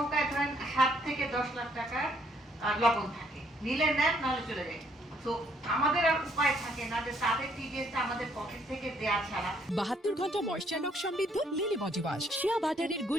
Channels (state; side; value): normal; both; correlation 0.67